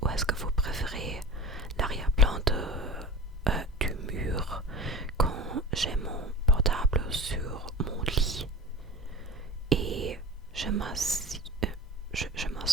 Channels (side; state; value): both; normal; correlation 0.34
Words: ou est-ce que vous préférez l'arrière-plan du mur quand j'ai mon portable sur mon lit et je m'assois